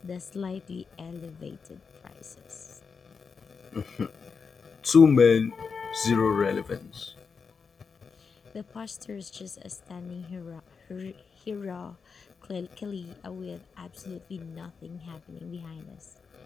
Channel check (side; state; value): right; quieter; 5.5 dB